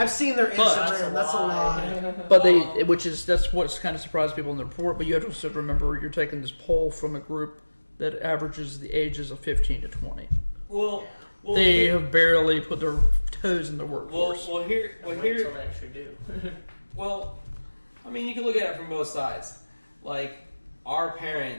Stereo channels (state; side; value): inverted; both; correlation -1.00